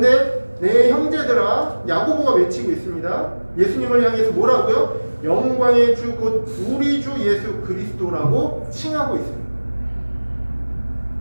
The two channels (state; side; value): inverted; both; correlation -1.00